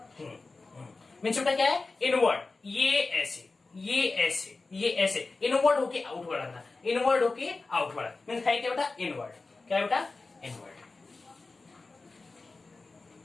मीन्स बेटा क्या है, इनवर्ड, ये ऐसे, ये ऐसे, ये ऐसे, इनवर्ड होके आउटवर्ड आना, इनवर्ड होके आउटवर्ड, मीन्स है क्या बेटा, इनवर्ड, क्या है बेटा, इनवर्ड,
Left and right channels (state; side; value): quieter; right; 3.7 dB